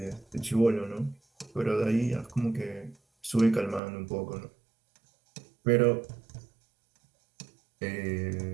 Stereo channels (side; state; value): left; drops out; at 3.8 s